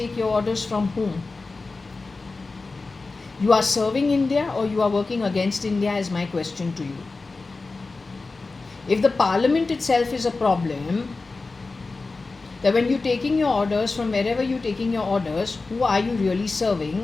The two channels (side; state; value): right; quieter; 3.7 dB